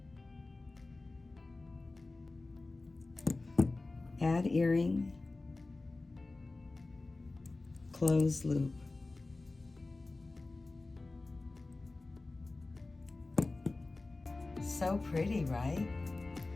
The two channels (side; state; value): right; quieter; 3.3 dB